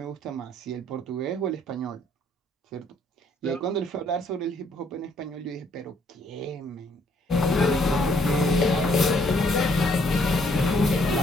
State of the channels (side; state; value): both; normal; correlation 0.66